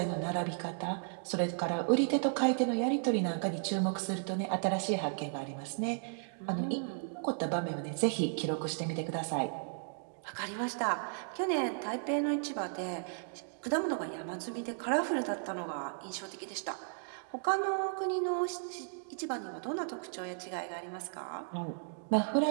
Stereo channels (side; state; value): left; silent; digital silence